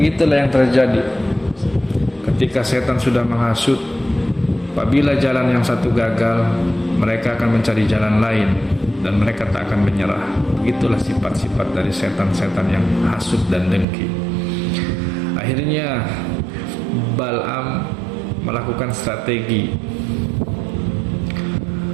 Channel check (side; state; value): left; drops out; at 13.9 s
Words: yang terjadi ketika setan sudah menghasut. Apabila jalan yang satu gagal, mereka akan mencari jalan lain dan mereka tak akan menyerah. Begitulah sifat-sifat dari setan-setan yang hasut dan dengki. Akhirnya Bal'am melakukan strategi.